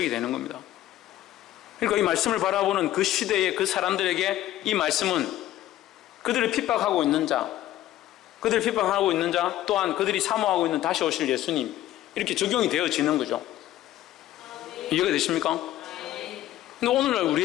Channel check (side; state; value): right; quieter; 13.9 dB